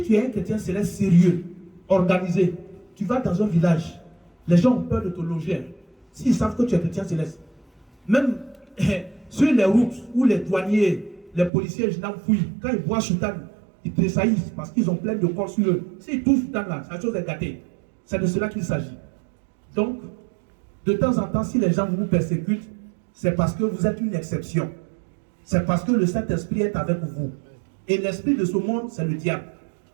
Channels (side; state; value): left; drops out; at 11.5 s